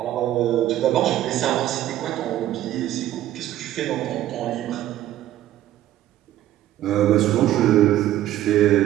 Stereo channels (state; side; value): quieter; left; 13.3 dB